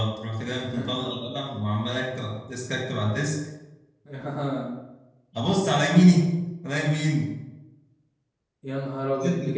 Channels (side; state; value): both; identical; correlation 1.00